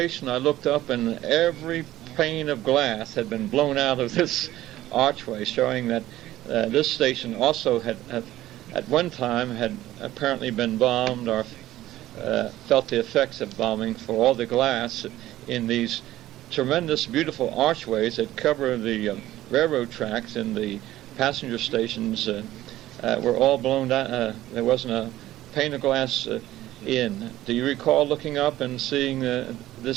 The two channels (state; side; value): quieter; left; 14.8 dB